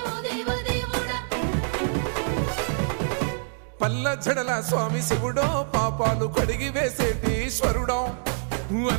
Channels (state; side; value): silent; left; digital silence